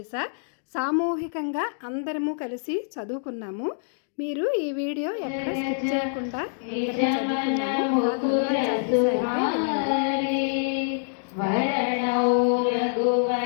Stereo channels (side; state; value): right; silent; digital silence